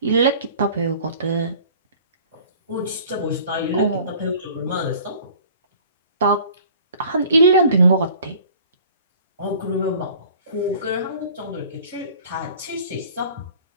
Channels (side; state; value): both; inverted; correlation -0.48